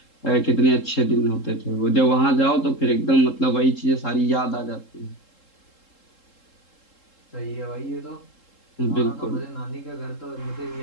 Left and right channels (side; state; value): right; late; 3.7 ms